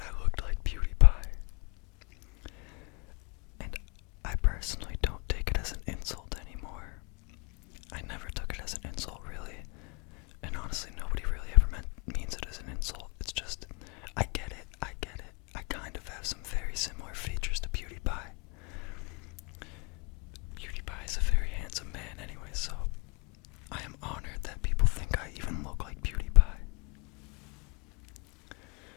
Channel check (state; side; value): quieter; right; 33.0 dB